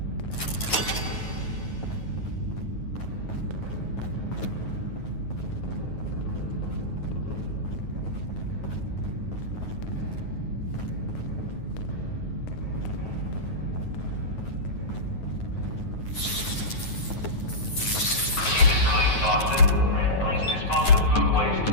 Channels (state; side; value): late; right; 9.3 ms